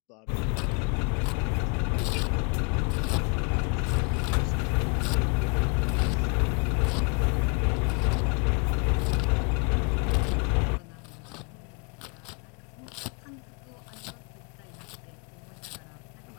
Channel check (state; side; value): quieter; right; 34.0 dB